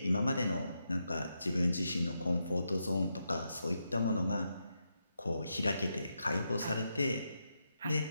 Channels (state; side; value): inverted; both; correlation -0.84